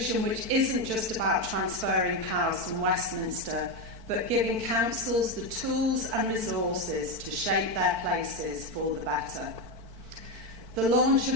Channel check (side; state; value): left; late; 4.5 ms